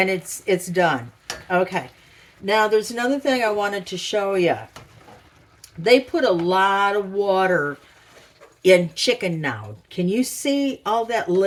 done. Okay. Now there's another thing I wanted to show you. They put a lot of water in chicken now. Can you see all that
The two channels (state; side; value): identical; both; correlation 1.00